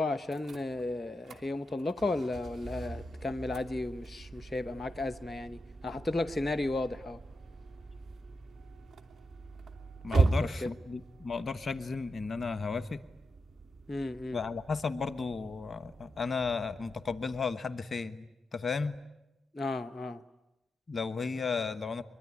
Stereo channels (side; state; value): both; normal; correlation 0.87